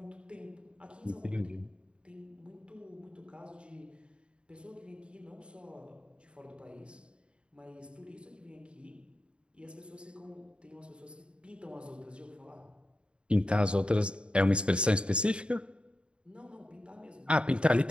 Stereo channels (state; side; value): late; left; 0.055 ms